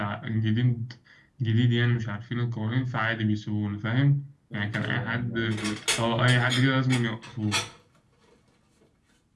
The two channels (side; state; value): both; identical; correlation 1.00